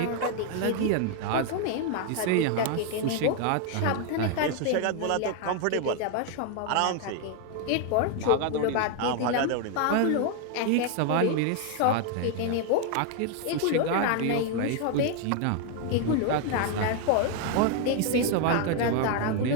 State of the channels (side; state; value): both; different; correlation 0.01